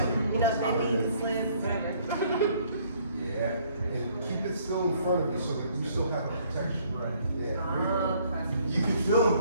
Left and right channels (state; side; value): inverted; both; correlation -0.63